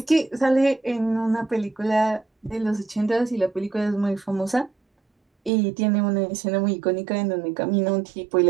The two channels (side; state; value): left; drops out; at 5.5 s